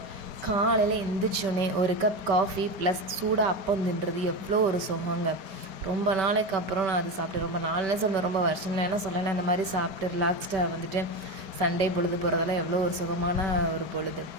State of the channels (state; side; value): late; left; 5.2 ms